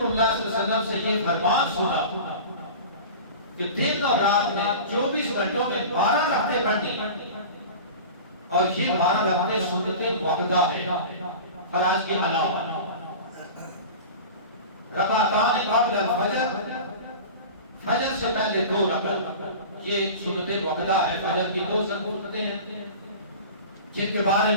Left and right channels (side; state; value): both; inverted; correlation -0.35